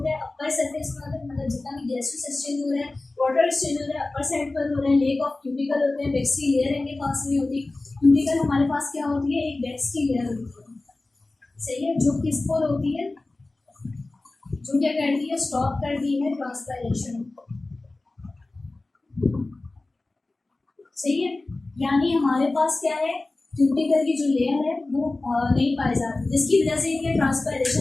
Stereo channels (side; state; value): right; quieter; 3.1 dB